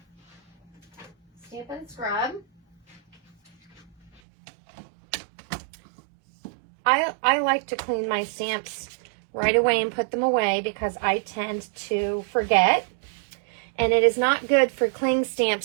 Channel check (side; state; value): left; drops out; at 4.2 s